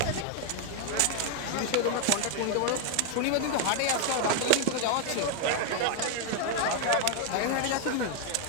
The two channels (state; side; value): different; both; correlation 0.00